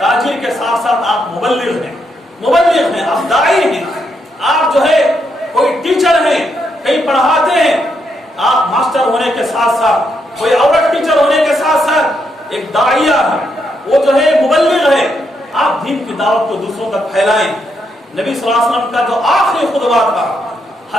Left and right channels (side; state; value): both; normal; correlation 0.79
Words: کے ساتھ ساتھ آپ مبلغ ہیں, مبلغ ہیں, آپ داعی ہیں. آپ جو ہے کوئی ٹیچر ہیں, کہیں پڑھاتے ہیں, آپ ماسٹر ہونے کے ساتھ ساتھ, کوئی عورت ٹیچر ہونے کے ساتھ ساتھ ایک داعیہ ہے, وہ جو ہے مبلغ ہے. آپ دین کی دعوت کو دوسروں تک پھیلائیں. نبی صلی اللہ علیہ وسلم کا جو آخری خطبہ تھا